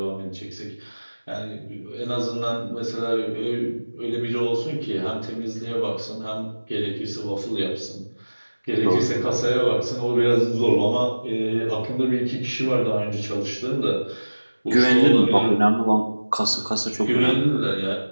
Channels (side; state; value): both; inverted; correlation -1.00